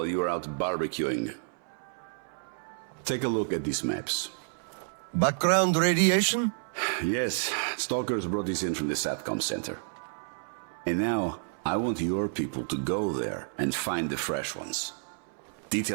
you were out barbecuing. Take a look at these maps. Background radiation? Yes, stalkers brought this in from the SATCOM center. And now, I want your people to go there and find the fresh ones.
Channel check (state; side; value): silent; left; 58 dB below the other